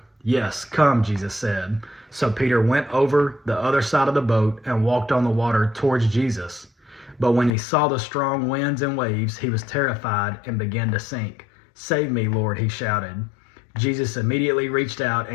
"Yes, come," Jesus said. So Peter went over the other side of the boat and walked on the water towards Jesus. But when he saw the strong winds and waves, he was terrified and began to sink. "Save me, Lord," he shouted. Jesus immediately reached out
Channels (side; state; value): right; drops out; at 7.5 s